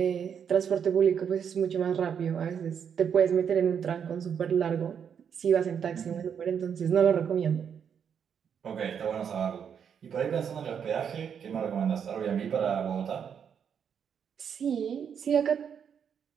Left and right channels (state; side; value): quieter; left; 7.6 dB